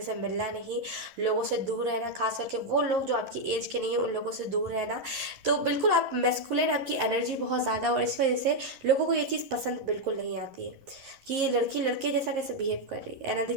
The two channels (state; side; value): late; left; 11 ms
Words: से मिलना नहीं, लोगों से दूर रहना, खास करके वो लोग जो आपकी एज के नहीं है उन लोगों से दूर रहना। तो बिल्कुल आप मैस्कुलिन, आपकी एनर्जी बहुत ज़्यादा, और इस वजह से लोगों को ये चीज़ पसंद बिल्कुल नहीं आती है कि ये लड़की लड़के जैसा कैसे बिहेव कर रही है। एंड